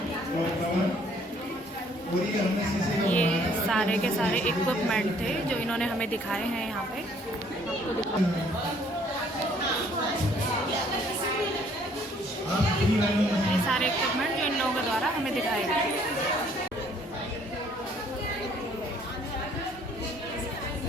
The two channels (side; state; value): both; normal; correlation 0.61